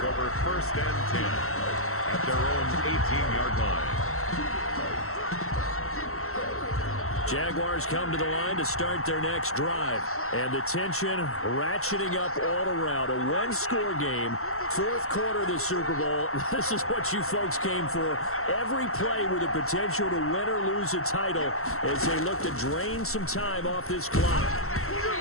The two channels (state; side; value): late; right; 0.63 ms